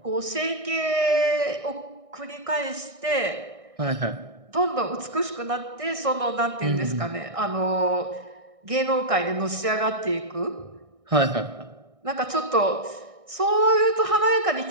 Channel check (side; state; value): left; late; 1.6 ms